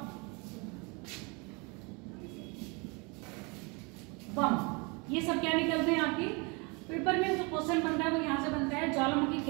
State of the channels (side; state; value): left; quieter; 30.0 dB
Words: बम ये सब क्या निकलते हैं आपके पेपर में। जो क्वेश्चन बनता है वो यहाँ से बनता है, ज्वालामुखी